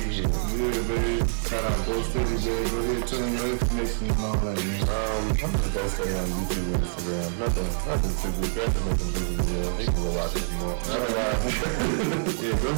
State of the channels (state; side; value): silent; left; 55 dB below the other